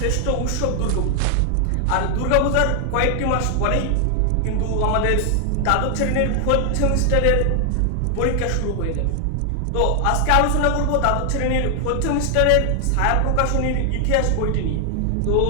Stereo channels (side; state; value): both; different; correlation 0.00